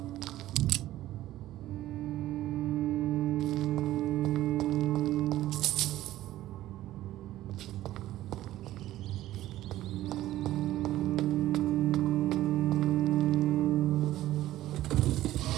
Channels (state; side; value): quieter; left; 14.6 dB